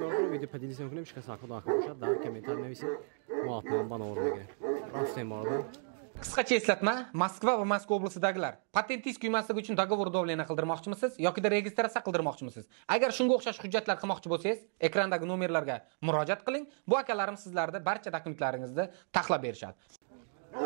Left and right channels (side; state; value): left; silent; 55 dB below the other